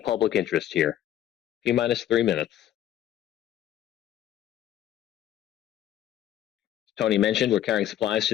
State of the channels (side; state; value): right; quieter; 11.7 dB